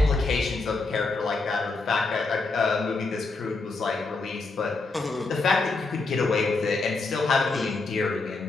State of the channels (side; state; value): right; quieter; 3.7 dB